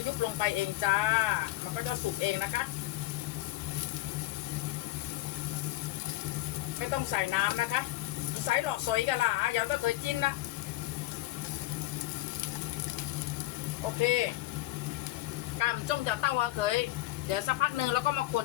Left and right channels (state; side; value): quieter; right; 17.4 dB